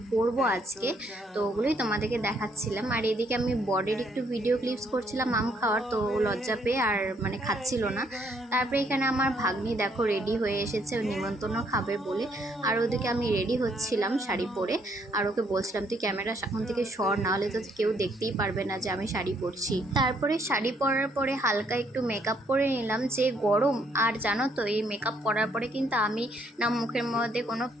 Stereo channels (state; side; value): normal; both; correlation 0.69